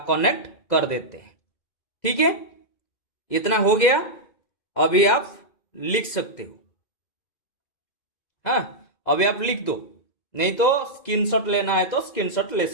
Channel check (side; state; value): right; late; 2.0 ms